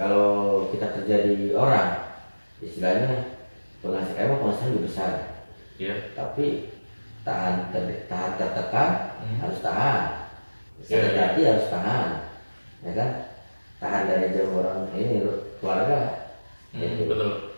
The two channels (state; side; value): inverted; both; correlation -1.00